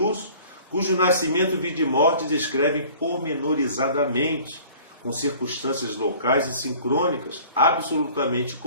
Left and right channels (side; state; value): both; inverted; correlation -0.49